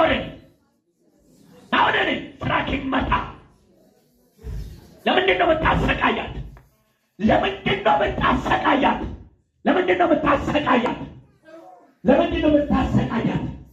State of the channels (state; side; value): identical; both; correlation 1.00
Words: ናውደኔ ስራክ ይመታ። ለምንድን ነው የምታሰቃያት? ለምንድን ነው የምታሰቃያት? ለምንድን ነው የምታሰቃያት? ለምንድን ነው የምታሰቃያት?